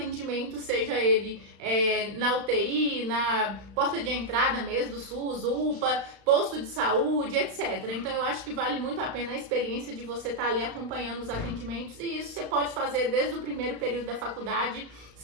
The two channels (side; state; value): left; late; 35 ms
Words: seja ele na UTI, na porta de entrada mesmo do SUS, UPA, posto de saúde, etc. Então eu acho que vale muito a pena a experiência de você estar ali acompanhando os atendimentos, e isso você pode fazer desde o primeiro período da faculdade,